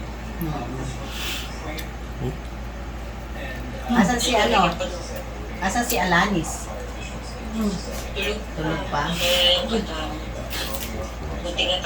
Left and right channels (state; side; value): identical; both; correlation 1.00